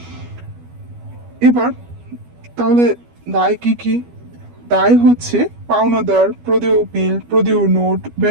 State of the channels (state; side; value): late; left; 12 ms